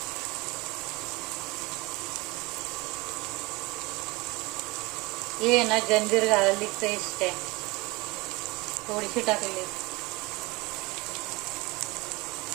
हे ना जंजीर गार्लिक पेस्ट आहे, थोडीशी टाकली.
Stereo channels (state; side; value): quieter; left; 23.9 dB